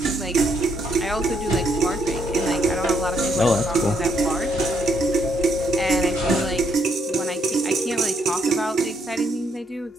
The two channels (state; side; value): normal; both; correlation 0.73